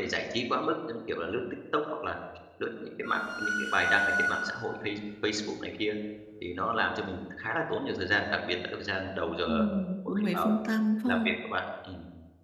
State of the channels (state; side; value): identical; both; correlation 1.00